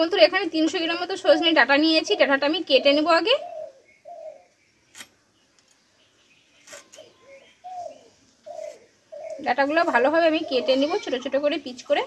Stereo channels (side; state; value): both; identical; correlation 1.00